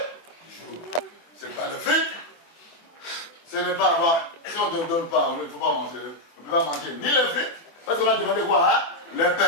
C'est pas le fric. Ce n'est pas avoir. Si on ne te donne pas, il ne faut pas manger. On ne peut pas manger ni le fric, parce qu'on a demandé quoi? Hein? Le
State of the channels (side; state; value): right; late; 24 ms